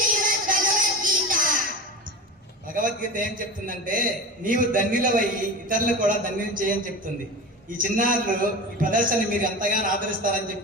భగవద్గీత. భగవద్గీత ఏం చెప్తుందంటే, నీవు ధన్యులవయ్యి ఇతరులు కూడా ధన్యులు చేయని చెప్తుంది. ఈ చిన్నారులు ఈ ప్రదర్శన మీరు ఎంతగానో ఆదరిస్తారని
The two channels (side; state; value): both; normal; correlation 0.28